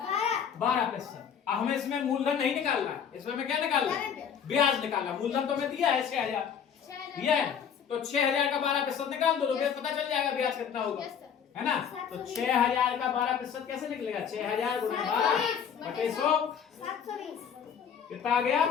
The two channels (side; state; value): right; quieter; 7.7 dB